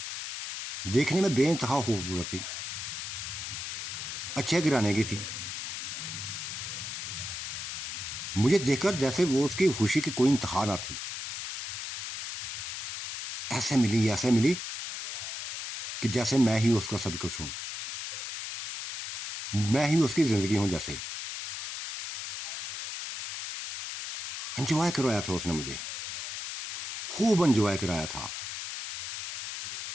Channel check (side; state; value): left; noise; hiss, 6 dB below the sound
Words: देखने में बेइंतहा खूबसूरत थी, अच्छे गिराने की थी। मुझे देखकर जैसे वो उसकी खुशी की कोई इंतहा ना थी। ऐसे मिली कि जैसे मैं ही उसका सब कुछ हूं, मैं ही उसकी ज़िंदगी हूं। जैसे एंजॉय करवाया था उसने मुझे, खूब एंजॉय कराया था।